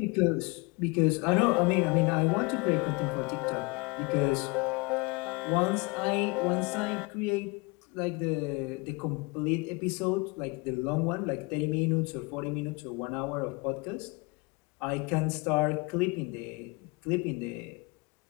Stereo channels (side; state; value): right; quieter; 27.9 dB